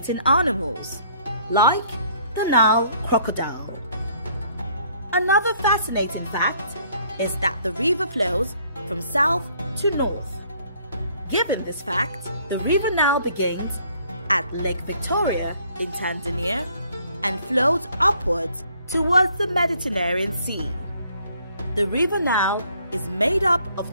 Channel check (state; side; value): inverted; both; correlation -0.62